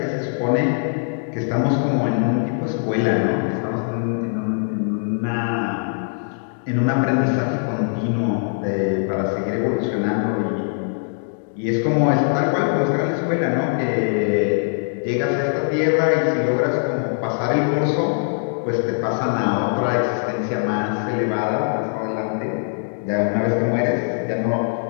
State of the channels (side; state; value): right; silent; digital silence